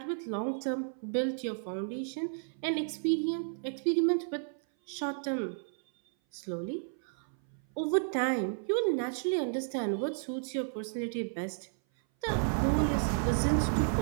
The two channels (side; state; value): left; silent; 56 dB below the other